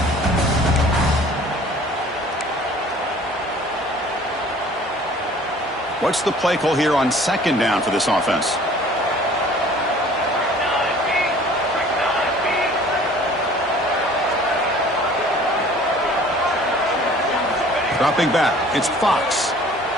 What's the play call here on 2nd down for this offense? Dropping back, it's Fox.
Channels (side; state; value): both; normal; correlation 0.50